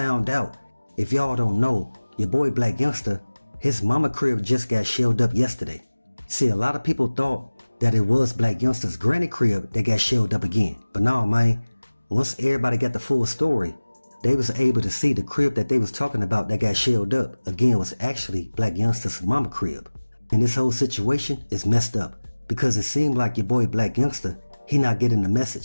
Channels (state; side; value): inverted; both; correlation -1.00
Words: out. If y'all don't know, your boy Blac Youngsta, his mama crib just got shelled up yesterday. See, a lot of people thought that it was Blac Youngsta's granny crib that got shelled up again. But no, man, once everybody got the full story, they was able to see the crib that they was talking about that got shelled up again was actually Blac Youngsta's mama crib. And this whole situation is messed up because it seemed like your boy Blac Youngsta, he not getting the